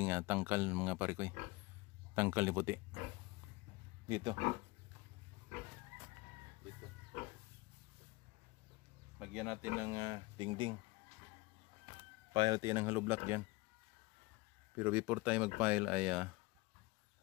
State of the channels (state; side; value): quieter; right; 22.8 dB